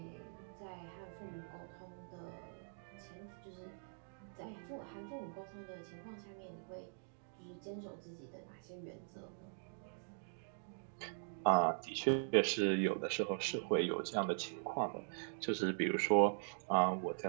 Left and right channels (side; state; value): left; silent; digital silence